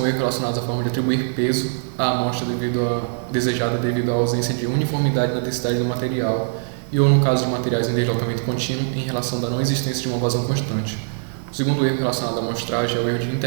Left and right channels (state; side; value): silent; left; digital silence